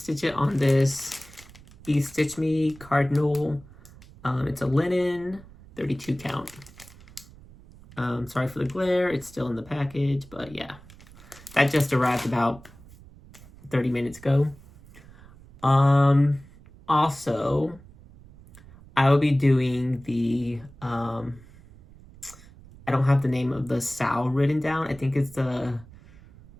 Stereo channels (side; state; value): right; noise; rumble, 22 dB below the sound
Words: it on this Be Stitch Me Cardinal. It's a linen, 32 count. Sorry for the glare, it's still in the package, but yeah. That just arrived about 30 minutes ago. Also, I will be doing the, I don't have the name of the Sal written down. I think it's the